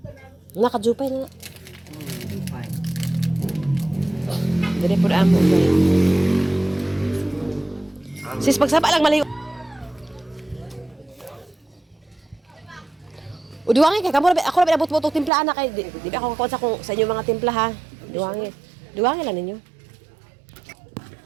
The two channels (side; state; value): left; drops out; at 15.3 s